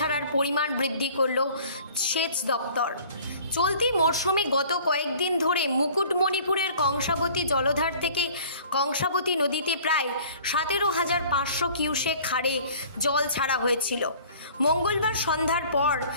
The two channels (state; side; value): inverted; both; correlation -0.49